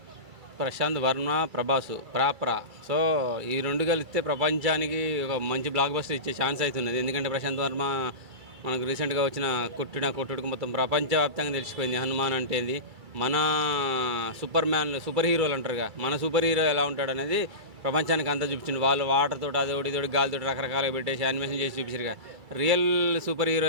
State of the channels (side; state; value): left; late; 2.3 ms